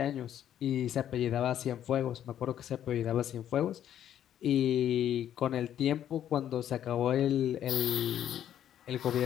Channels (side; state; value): right; quieter; 10.6 dB